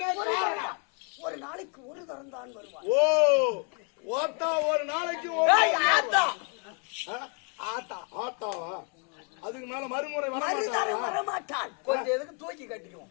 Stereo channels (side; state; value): right; quieter; 36.3 dB